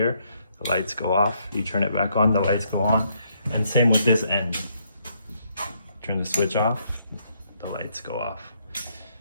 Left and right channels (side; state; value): both; inverted; correlation -0.73